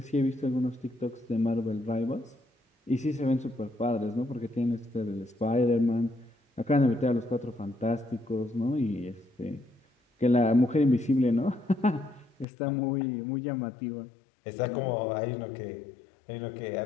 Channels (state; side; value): drops out; right; at 12.5 s